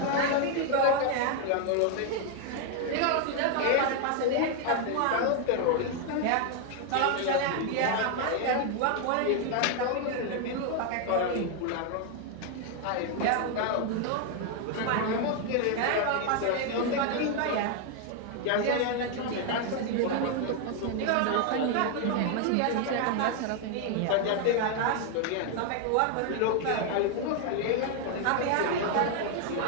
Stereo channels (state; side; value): different; both; correlation 0.00